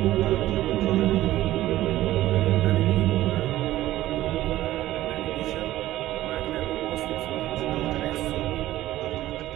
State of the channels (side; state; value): left; quieter; 15.0 dB